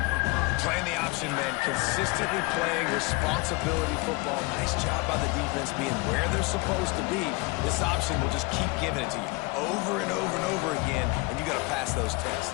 Playing the option, man. Consistently playing responsibility football. Nice job by the defense being where they're supposed to be. This option will just keep giving it to you over and over and over again, and you got to pass those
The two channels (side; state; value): right; quieter; 25.5 dB